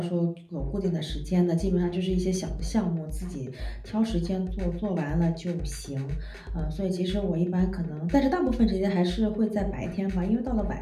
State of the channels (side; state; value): both; identical; correlation 1.00